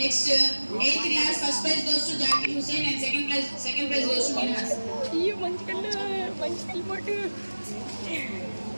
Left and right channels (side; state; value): both; inverted; correlation -1.00